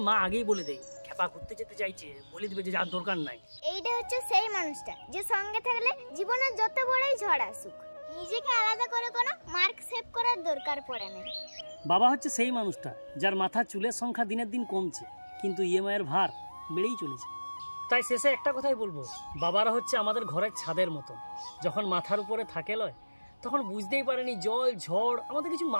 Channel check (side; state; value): both; inverted; correlation -1.00